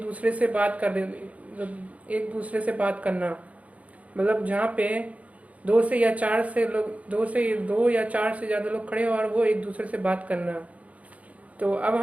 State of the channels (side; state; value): left; late; 0.068 ms